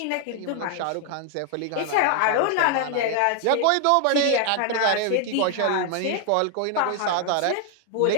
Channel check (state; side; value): different; both; correlation 0.00